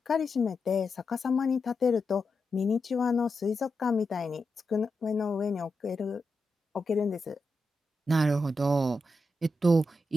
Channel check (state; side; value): normal; both; correlation 0.87